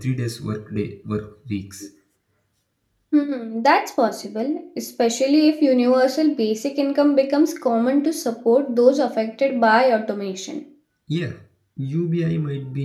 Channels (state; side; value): identical; both; correlation 1.00